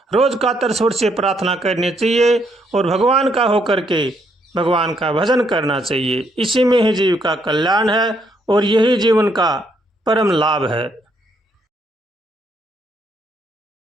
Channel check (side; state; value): both; normal; correlation 0.73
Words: रोज कातर स्वर से प्रार्थना करनी चाहिए और भगवान का होकर के भगवान का भजन करना चाहिए। इसी में ही जीव का कल्याण है और यही जीवन का परम लाभ है।